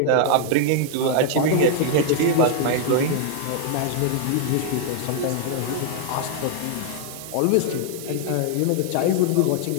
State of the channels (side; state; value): both; different; correlation 0.00